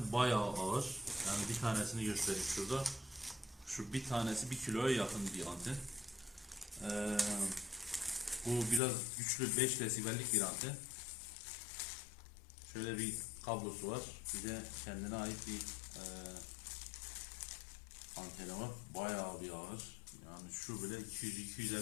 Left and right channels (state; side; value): drops out; right; at 8.8 s